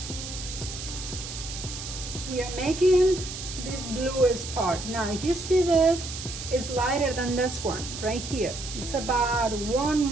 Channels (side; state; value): right; noise; hiss, 9 dB below the sound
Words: We are making this bluest part. Now if you see this, it's lighter than this one right here. It's about one